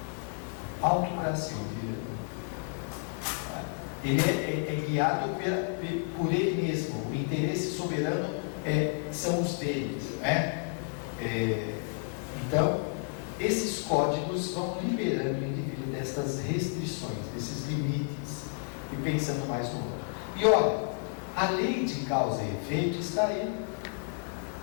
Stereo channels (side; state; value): right; silent; 57 dB below the other